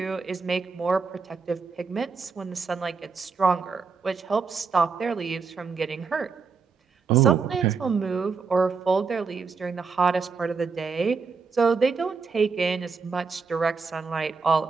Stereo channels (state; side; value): quieter; left; 5.0 dB